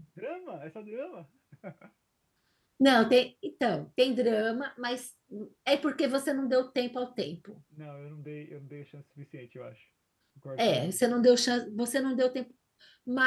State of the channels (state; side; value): identical; both; correlation 1.00